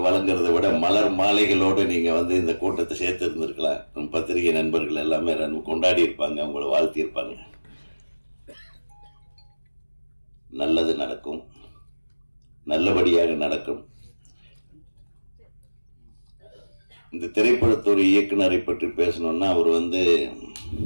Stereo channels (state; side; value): inverted; both; correlation -1.00